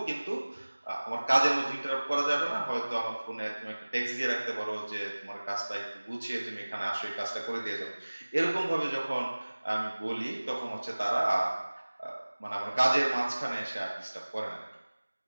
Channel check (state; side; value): inverted; both; correlation -1.00